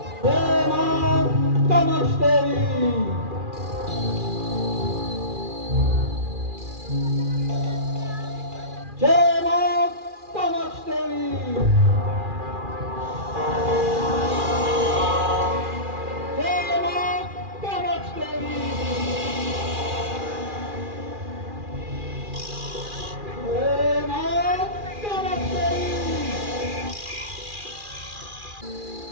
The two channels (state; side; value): late; left; 2.4 ms